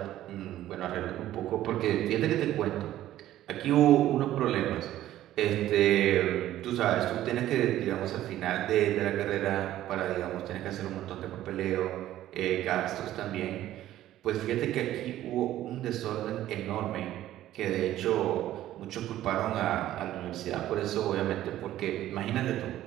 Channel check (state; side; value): quieter; left; 13.5 dB